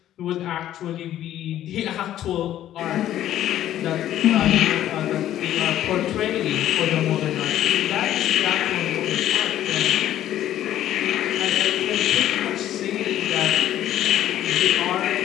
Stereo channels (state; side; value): quieter; right; 12.3 dB